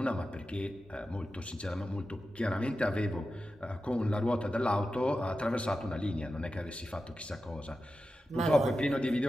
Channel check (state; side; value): normal; both; correlation 0.92